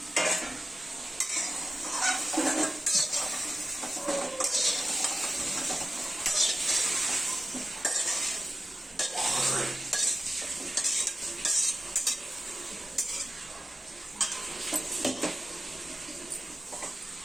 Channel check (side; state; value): both; normal; correlation 0.94